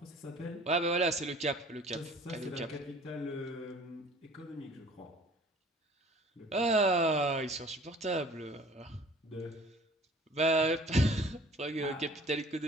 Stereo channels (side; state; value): both; normal; correlation 0.50